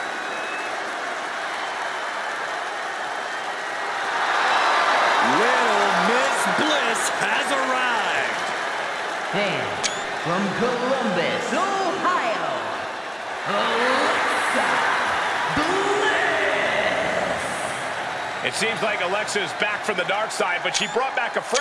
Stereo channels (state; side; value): identical; both; correlation 1.00